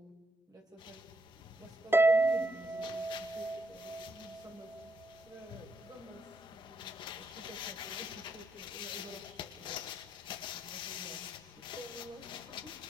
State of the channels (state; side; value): normal; both; correlation 0.77